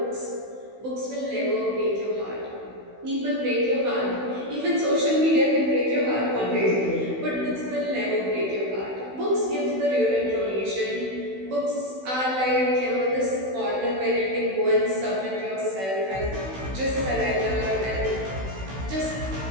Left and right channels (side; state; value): left; late; 16 ms